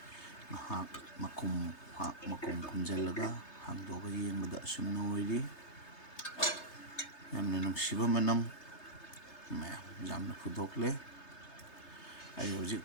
ꯉꯥꯏꯍꯥꯛ ꯃꯈꯨꯝ ꯈꯨꯝꯖꯤꯜꯂꯒ ꯍꯥꯡꯗꯣꯛꯑꯒ ꯌꯦꯡꯕꯗ ꯑꯁꯨꯝꯅ ꯑꯣꯏꯔꯤ꯫ ꯌꯥꯝꯅ ꯅꯨꯡꯁꯤꯕ ꯃꯅꯝ ꯃꯌꯥꯝ ꯌꯥꯝꯅ ꯐꯨꯗꯣꯛꯂꯦ꯫ ꯑꯩ ꯍꯧꯖꯤꯛ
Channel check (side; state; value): right; late; 3.3 ms